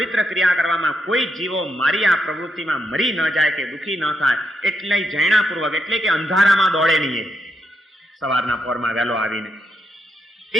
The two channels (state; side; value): normal; both; correlation 0.80